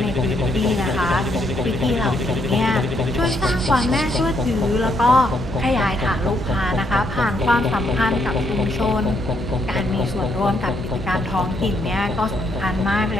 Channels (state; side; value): noise; left; hum, 13 dB below the sound